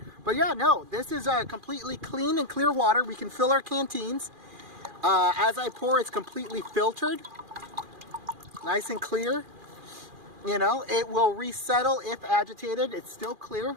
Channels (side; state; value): left; late; 2.4 ms